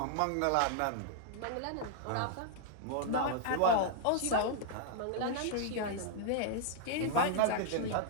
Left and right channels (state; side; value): different; both; correlation -0.01